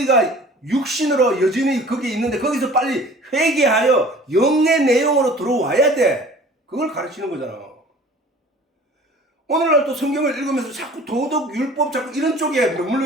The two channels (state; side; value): normal; both; correlation 0.46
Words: 육신으로 여전히 거기에 있는데 거기서 빨리 회개하여 영의 내용으로 들어와야 돼. 그걸 가르치는 거잖아. 오늘날 또 성경을 읽으면서 자꾸 도덕, 율법, 자꾸 이런 쪽에